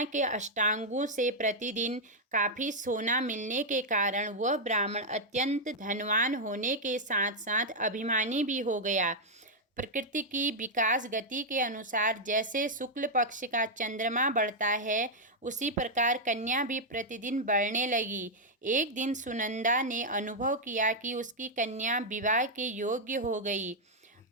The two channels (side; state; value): both; normal; correlation -0.03